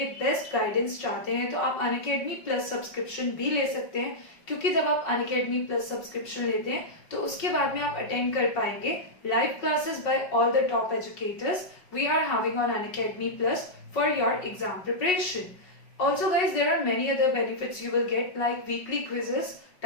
बेस्ट गाइडेंस चाहते हैं तो आप अनअकैडमी प्लस सब्सक्रिप्शन भी ले सकते हैं, क्योंकि जब आप अनअकैडमी प्लस सब्सक्रिप्शन लेते हैं तो उसके बाद में आप अटेंड कर पाएंगे live classes by all the top educators we are having on Unacademy Plus for your exam preparation. Also guys, there are many other benefits you will get like weekly quizzes,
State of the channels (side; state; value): right; late; 5.4 ms